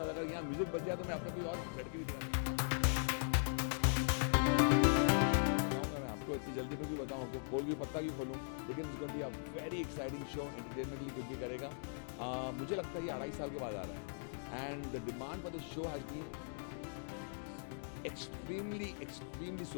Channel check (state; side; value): silent; right; digital silence